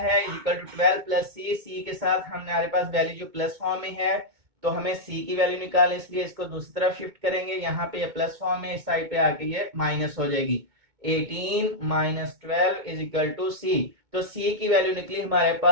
इज इक्वल टू 12 प्लस सी। सी के साथ हमारे पास वैल्यू जो प्लस फॉर्म में है, तो हमें सी की वैल्यू निकालने, इसलिए इसको दूसरी तरफ शिफ्ट करेंगे। यहाँ पे ये प्लस फॉर्म में, इस साइड पे आके ये माइनस हो जाएगी। 18 माइनस 12 इज इक्वल टू सी। तो सी की वैल्यू निकली हमारे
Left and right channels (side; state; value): left; late; 2.2 ms